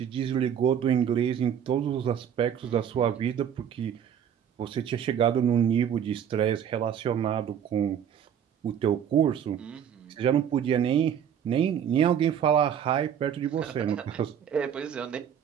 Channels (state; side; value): quieter; left; 8.8 dB